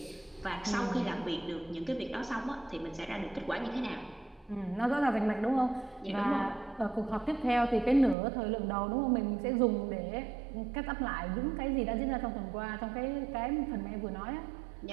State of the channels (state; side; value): drops out; left; at 8.2 s